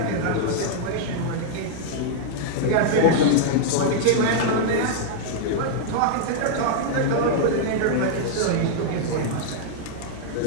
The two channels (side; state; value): both; different; correlation -0.01